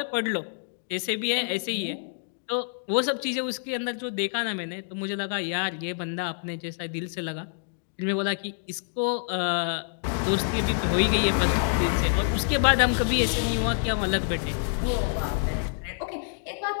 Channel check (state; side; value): silent; right; digital silence